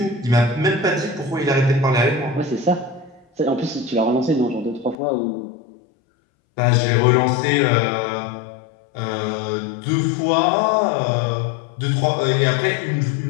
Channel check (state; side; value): drops out; right; at 5.0 s